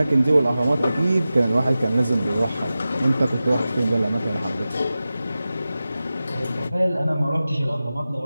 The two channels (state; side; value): inverted; both; correlation -0.95